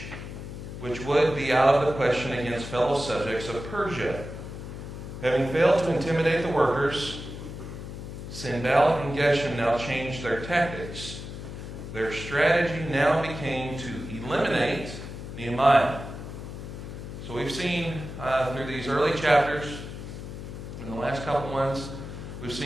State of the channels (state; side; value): noise; left; hum, 9 dB below the sound